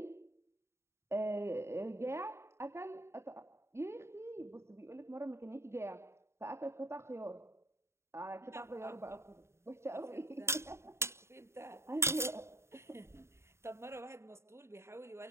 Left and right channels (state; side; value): late; left; 0.13 ms